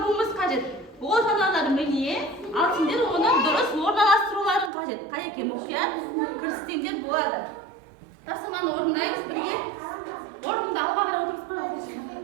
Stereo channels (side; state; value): left; drops out; at 4.7 s